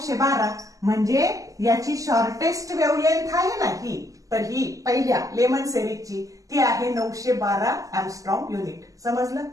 म्हणजे याची शॉर्टेस्ट वेव्हलेंथ आहे ना ही तर ही पहिल्या लेमन सिरीजची ती आहे 912 एंगस्ट्रॉम युनिट. समजलं?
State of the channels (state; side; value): late; left; 0.16 ms